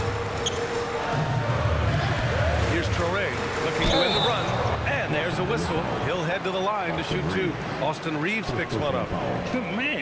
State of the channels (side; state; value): both; identical; correlation 1.00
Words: Here's Traore looking to win the run. And there's a whistle. He'll head to the line to shoot 2. Austin Reeves picks one up.